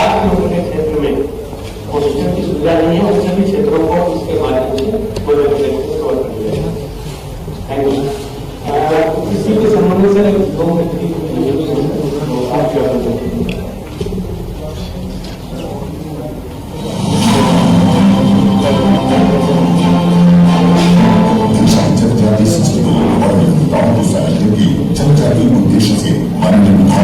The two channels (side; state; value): both; identical; correlation 1.00